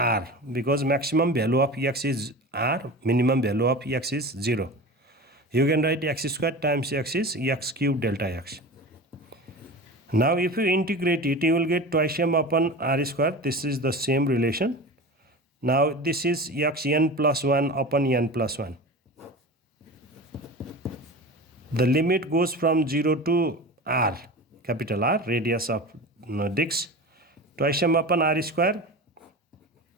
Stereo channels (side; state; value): both; normal; correlation 0.32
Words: because maximum value of x is r, minimum value of x is 0. You can write x square times x is x cube delta x. Now if you integrate it, you will get twice m upon r square. This is the same relation. Now this is x n plus 1 upon n plus 1. The limit goes from 0 to r, capital R, radius of disc. Twice m upon r square,